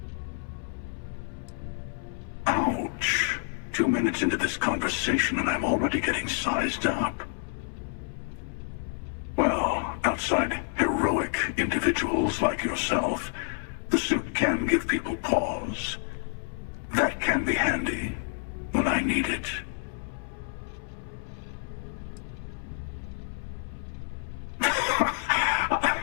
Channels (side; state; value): right; silent; 59 dB below the other